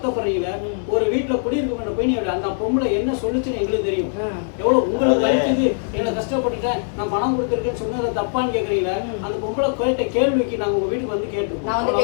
ஒரு வீட்டுல குடியிருக்க போய் அந்த பொம்பளை என்ன சொல்லுச்சுன்னு எங்களுக்கு தெரியும். எவ்வளவு உங்களுக்கு வலிக்குது, என்ன கஷ்டப்பட்டுட்டேன், நான் பணம் கொடுத்துருக்கேன்னு சொன்னதை தப்பான்னு கேக்குறீங்களா? அந்த பொம்பளை கேட்ட கேள்விக்கு நாங்க உங்க வீட்டுக்கு வந்து கேட்டுருக்கோம்.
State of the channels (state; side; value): silent; right; 65 dB below the other